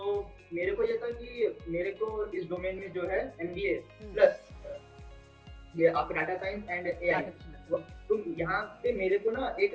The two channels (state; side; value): identical; both; correlation 1.00